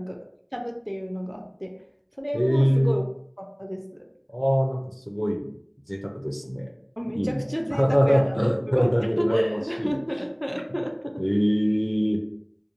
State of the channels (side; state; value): both; identical; correlation 1.00